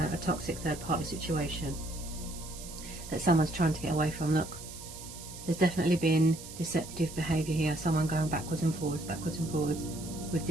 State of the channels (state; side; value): noise; right; hiss, 13 dB below the sound